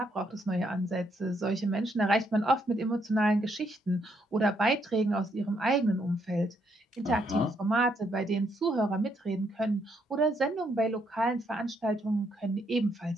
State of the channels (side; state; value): both; normal; correlation 0.74